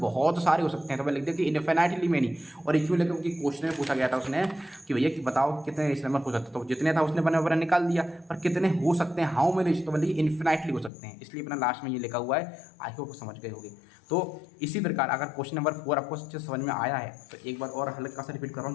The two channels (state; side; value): drops out; right; at 10.9 s